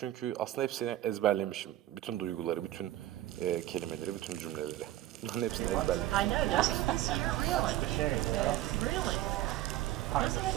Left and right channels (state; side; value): quieter; left; 14.6 dB